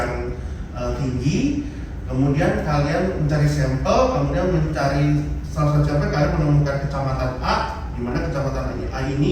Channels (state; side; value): identical; both; correlation 1.00